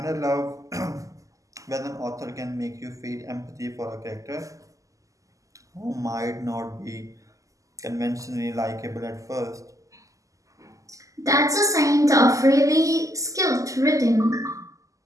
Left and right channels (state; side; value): late; left; 0.16 ms